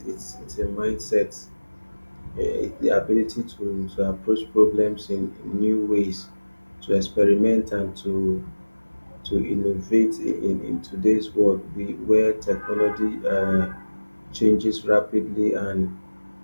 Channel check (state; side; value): inverted; both; correlation -1.00